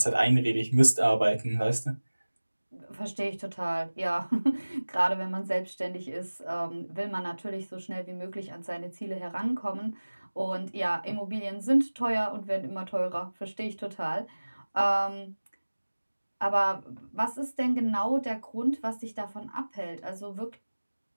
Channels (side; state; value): both; inverted; correlation -1.00